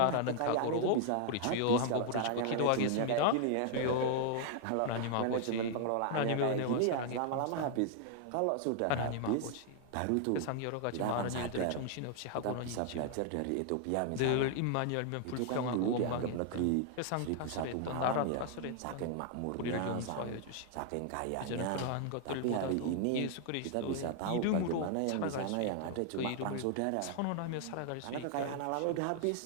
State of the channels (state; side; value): different; both; correlation 0.00